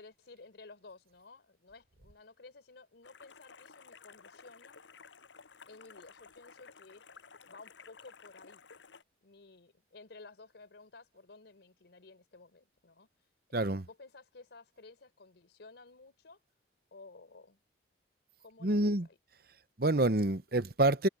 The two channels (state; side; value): normal; both; correlation 0.27